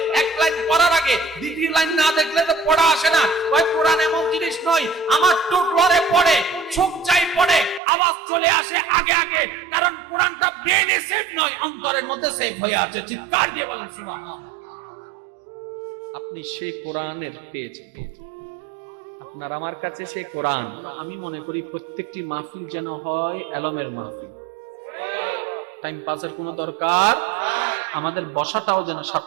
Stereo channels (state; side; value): drops out; left; at 7.8 s